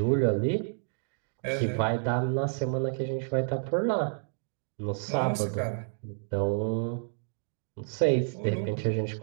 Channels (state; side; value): silent; left; digital silence